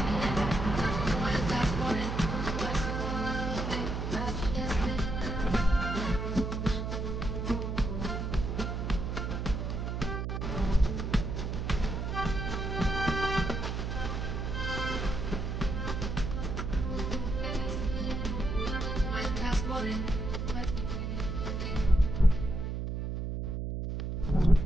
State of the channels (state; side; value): noise; right; hum, 3 dB below the sound